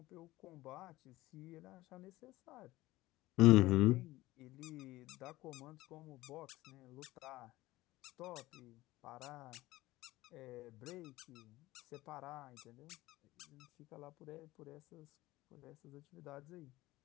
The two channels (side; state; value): right; quieter; 18.0 dB